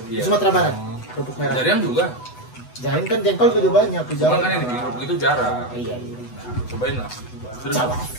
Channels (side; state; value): right; late; 8.1 ms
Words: Iya. Sumatera Barat. Kerupuk merah. Jarian juga. Jangan kan jengkol juga banyak. Cuman kan yang di kerupuk itu jarang. Iya. Cobain lah. Serius.